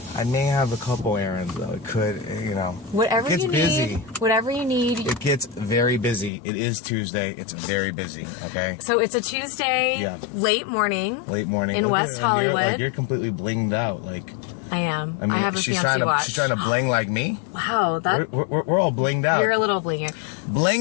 may have a couple errands though. It could, Whatever it gets you busy. need. Whatever you need. It gets very busy. It is Tuesday. It's very busy. Okay. So it's a Tuesday, Yeah. late morning. Late morning in West Hollywood. You're completely blinged out. Like I am. I mean, I have a fancy watch. She's trying to bling like me. Wow, that We're all blinged out. you're a little blinger.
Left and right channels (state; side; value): drops out; right; at 6.3 s